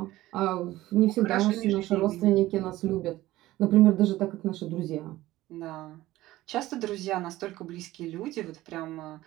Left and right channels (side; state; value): left; quieter; 16.5 dB